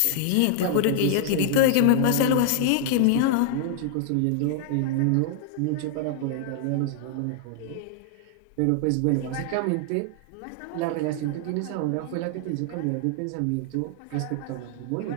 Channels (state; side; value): different; both; correlation 0.00